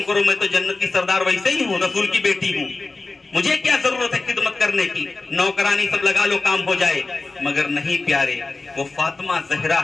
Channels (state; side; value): quieter; right; 3.6 dB